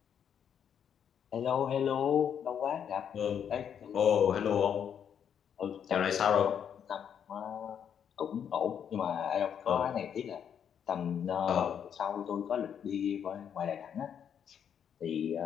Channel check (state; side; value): quieter; right; 8.3 dB